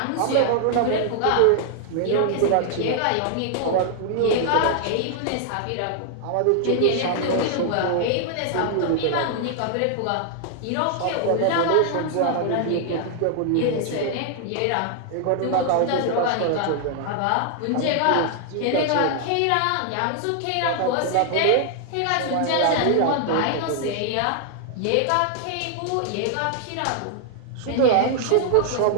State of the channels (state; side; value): different; both; correlation 0.00